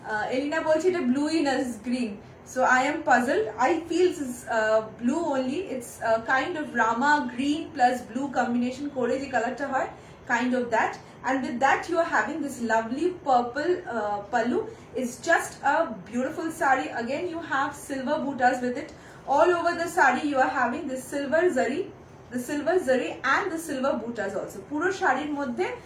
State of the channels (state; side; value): identical; both; correlation 1.00